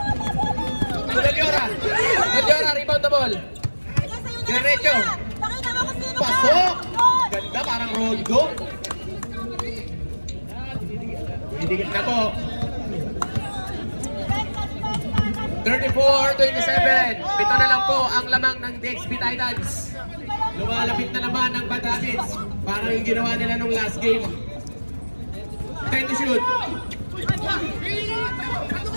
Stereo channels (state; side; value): inverted; both; correlation -1.00